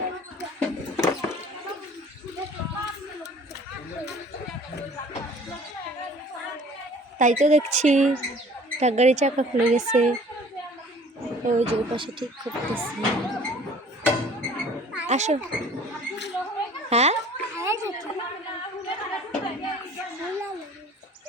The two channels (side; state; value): both; normal; correlation 0.50